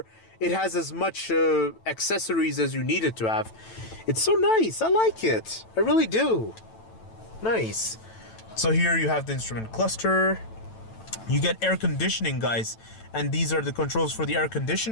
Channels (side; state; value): right; late; 9.0 ms